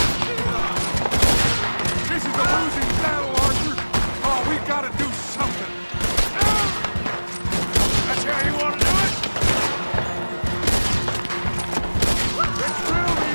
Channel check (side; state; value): both; inverted; correlation -1.00